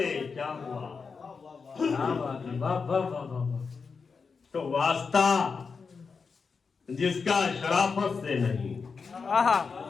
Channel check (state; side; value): quieter; right; 5.2 dB